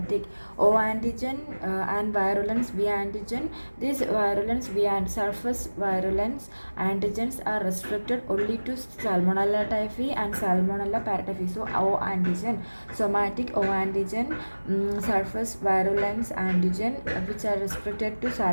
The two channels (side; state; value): both; inverted; correlation -1.00